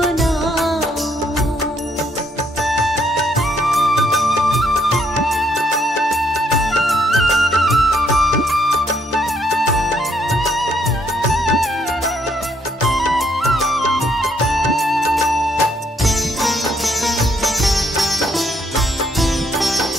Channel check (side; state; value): both; normal; correlation 0.71